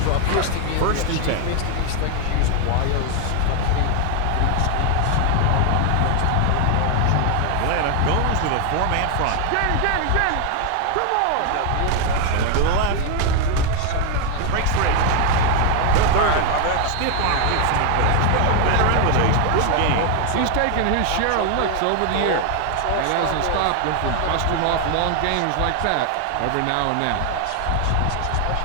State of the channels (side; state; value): both; different; correlation 0.00